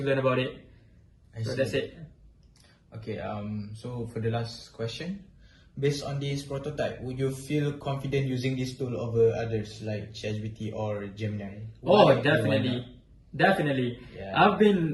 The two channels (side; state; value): both; identical; correlation 1.00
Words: learn about it. So that's it. Okay, so for the last question, based on this prototype, would you feel confident using this tool over others like ChatGPT or Gemini? Oh, definitely. Definitely. Yeah. I've